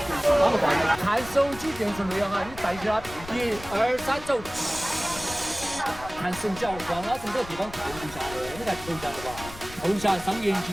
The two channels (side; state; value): left; noise; rumble, 15 dB below the sound